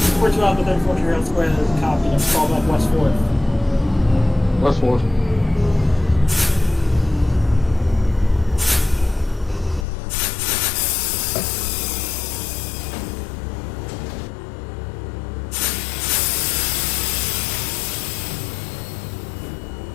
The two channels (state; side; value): drops out; right; at 9.9 s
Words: 42 Alpha, then 14 Harold Square, that is a copy. Next call back West 4th. West 4th.